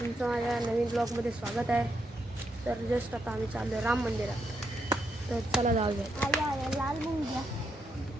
माझ्या नवीन ब्लॉगमध्ये स्वागत आहे. तर जस्ट आता आम्ही चाललो आहे राम मंदिरात. तर चला जाऊयात.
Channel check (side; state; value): both; normal; correlation 0.80